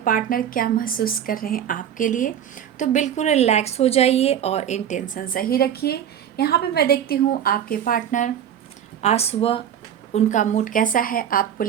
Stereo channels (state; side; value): quieter; left; 9.6 dB